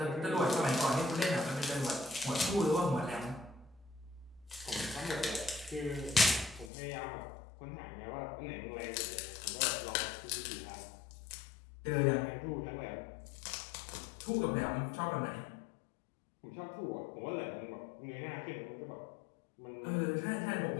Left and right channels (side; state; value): right; drops out; at 6.7 s